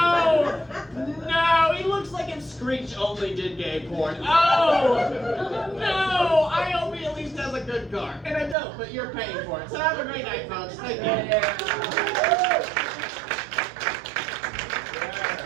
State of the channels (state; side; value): drops out; left; at 8.6 s